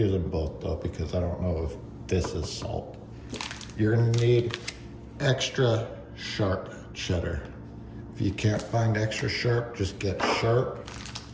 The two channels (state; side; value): identical; both; correlation 1.00